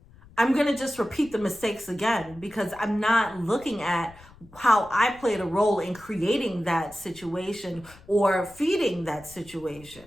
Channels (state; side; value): noise; left; rumble, 23 dB below the sound